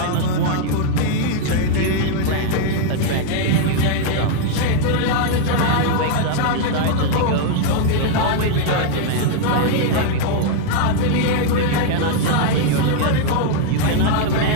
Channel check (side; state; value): both; different; correlation 0.00